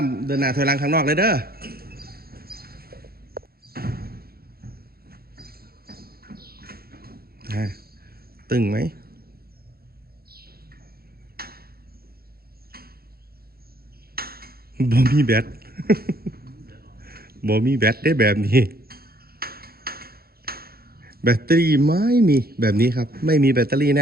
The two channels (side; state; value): left; late; 0.44 ms